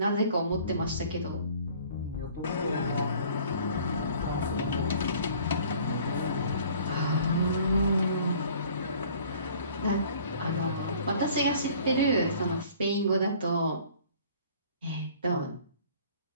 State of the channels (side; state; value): both; inverted; correlation -0.52